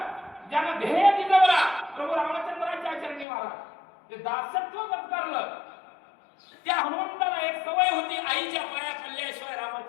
ज्यानं ध्येय दिलं प्रभू रामचंद्राच्या चरणी महाराज ते दासत्व पत्करलं. त्या हनुमंताला एक सवय होती, आईच्या पाया पडल्याशिवाय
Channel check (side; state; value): right; drops out; at 3.2 s